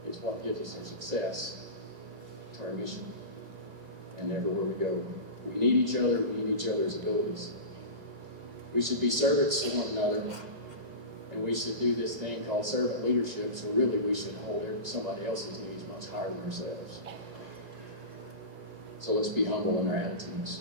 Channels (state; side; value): late; left; 2.0 ms